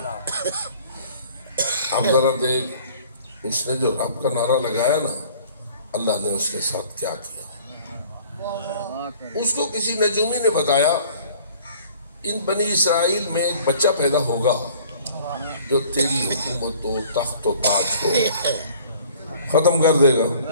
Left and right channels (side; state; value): both; inverted; correlation -0.52